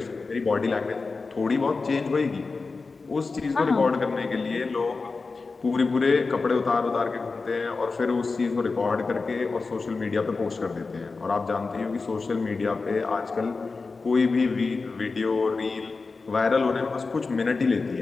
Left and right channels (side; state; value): right; quieter; 4.1 dB